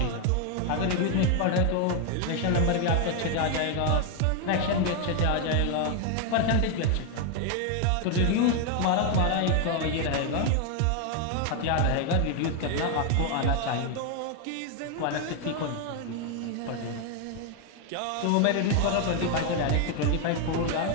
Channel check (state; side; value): different; both; correlation 0.01